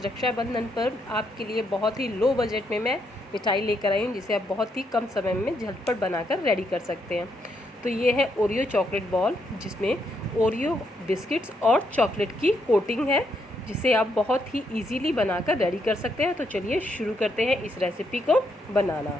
रक्षाबंधन पर आपके लिए बहुत ही लो बजट में मैं मिठाई लेकर आई हूँ, जिसे आप बहुत ही कम समय में झटपट बनाकर रेडी कर सकते हैं। तो ये है ओरियो चॉकलेट बॉल, जिसमें ओरियो बिस्किट्स और चॉकलेट की कोटिंग है, जिसे आप बहुत ही इजीली बनाकर रेडी कर सकते हैं। तो चलिए शुरू करते हैं इस रेसिपी को बनाना।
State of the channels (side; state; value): both; normal; correlation 0.77